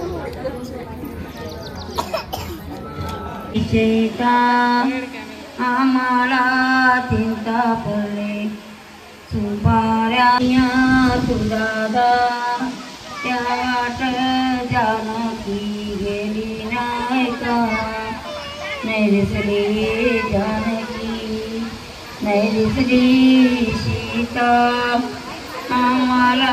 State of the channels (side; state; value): both; identical; correlation 1.00